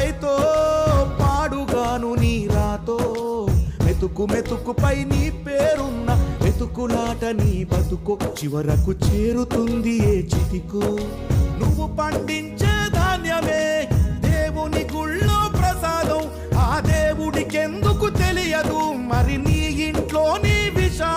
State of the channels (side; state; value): both; identical; correlation 1.00